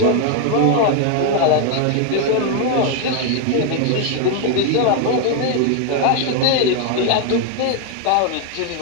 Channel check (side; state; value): both; different; correlation 0.00